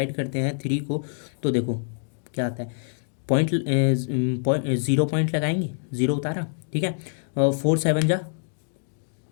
करते हैं 3 को, तो देखो क्या आता है, पॉइंट 0 पॉइंट लगाएंगे, 0 उतारा, ठीक है। 4 7 जा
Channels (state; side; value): silent; right; digital silence